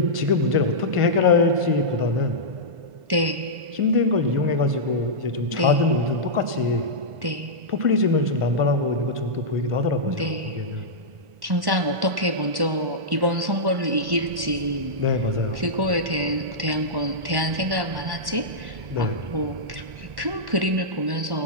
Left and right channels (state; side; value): late; left; 1.5 ms